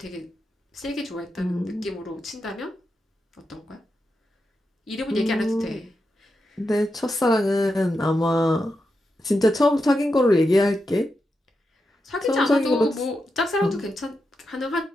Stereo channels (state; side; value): normal; both; correlation 0.87